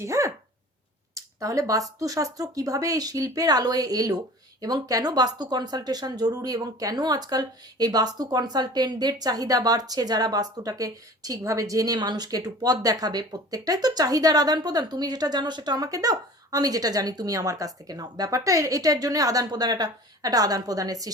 হ্যাঁ, তাহলে বাস্তুশাস্ত্র কিভাবে এই শিল্পের আলোয় এলো এবং কেন বাস্তু কনসালটেশন জরুরি এবং কেন আজকাল এই বাস্তু কনসালটেন্টদের চাহিদা বাড়ছে, যারা বাস্তুটাকে ঠিকভাবে জেনে মানুষকে একটু পথ দেখাবে। প্রত্যেকটাই তো চাহিদার আদান প্রদান, তুমি যেটা জানো সেটা আমাকে দাও, আমি যেটা জানি তুমি আমার কাছ থেকে নাও। ব্যাপারটা এটার জন্য আদান প্রদান, একটা আদান প্রদানের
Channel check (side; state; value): both; normal; correlation 0.42